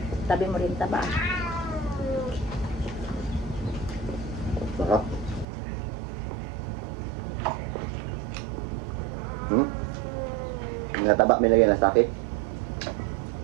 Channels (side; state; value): left; drops out; at 5.5 s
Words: Tabi mo rin taba. Sarap. Nataba, may lagyan na sakit.